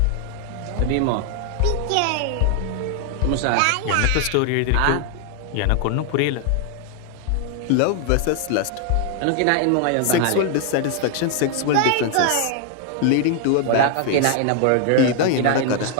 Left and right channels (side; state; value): both; different; correlation 0.00